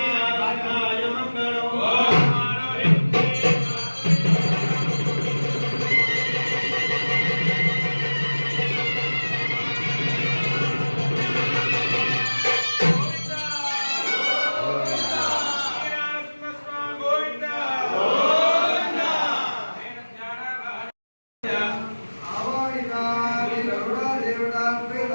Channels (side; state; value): both; inverted; correlation -1.00